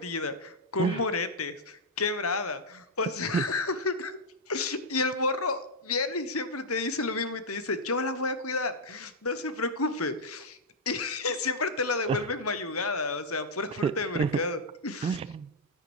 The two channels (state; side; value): normal; both; correlation -0.04